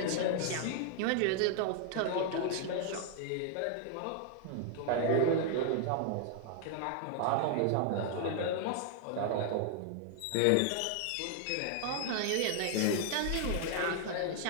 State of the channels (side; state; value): both; different; correlation 0.00